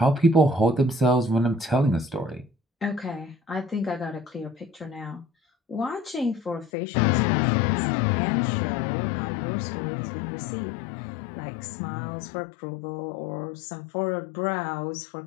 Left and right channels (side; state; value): right; drops out; at 6.7 s